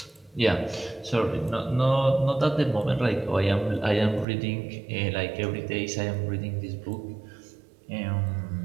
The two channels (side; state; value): left; drops out; at 4.2 s